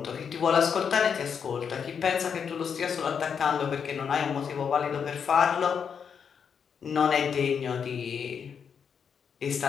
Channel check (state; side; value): quieter; right; 6.9 dB